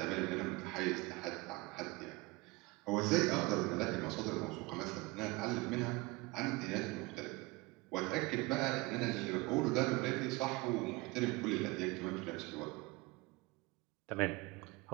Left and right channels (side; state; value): left; quieter; 24.1 dB